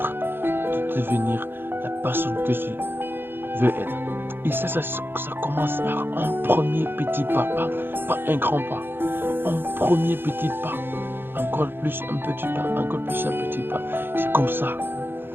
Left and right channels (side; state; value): left; late; 0.10 ms